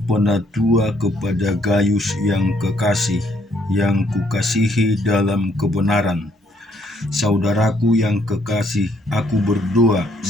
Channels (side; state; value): both; normal; correlation 0.69